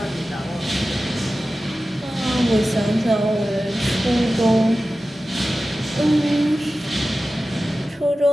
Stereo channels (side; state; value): both; normal; correlation 0.95